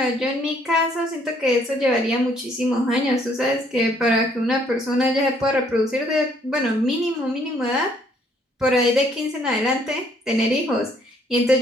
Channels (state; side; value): normal; both; correlation 0.65